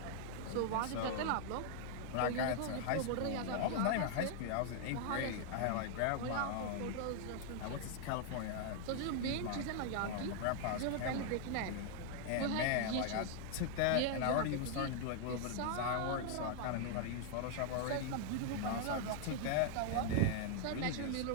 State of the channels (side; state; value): both; different; correlation 0.00